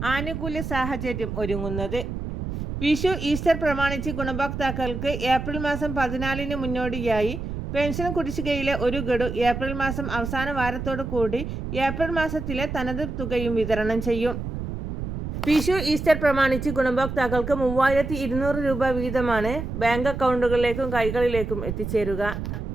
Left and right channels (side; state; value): right; noise; rumble, 6 dB below the sound